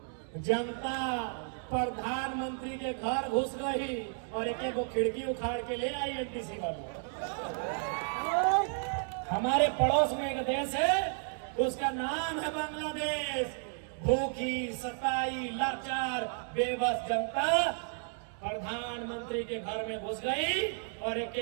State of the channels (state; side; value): silent; left; 56 dB below the other